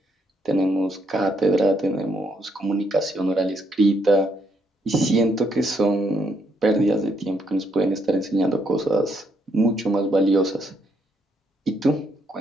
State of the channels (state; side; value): normal; both; correlation 0.74